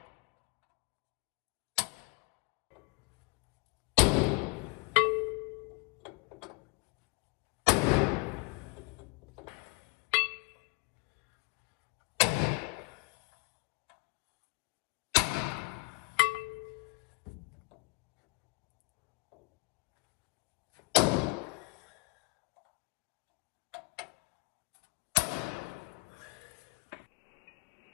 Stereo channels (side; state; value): right; quieter; 28.7 dB